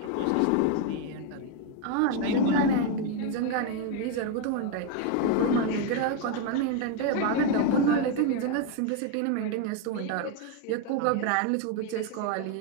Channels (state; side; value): different; both; correlation 0.01